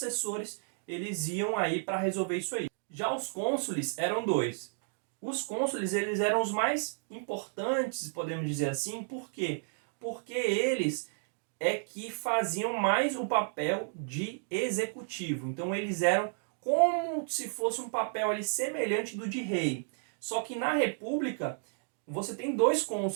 eles iam aí para resolver isso aí. Já os cônsules eram dois. Os cônsules, eles eram os mais importantes, podemos dizer assim. Por quê? Porque eles é que faziam mais o papel de executivo. Então eles eram como se fosse um papel ali semelhante do de rei. Só que na república você tem dois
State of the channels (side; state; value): left; silent; digital silence